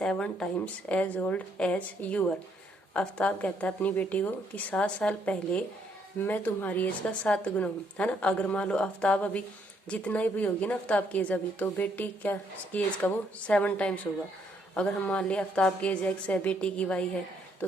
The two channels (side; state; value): both; normal; correlation 0.71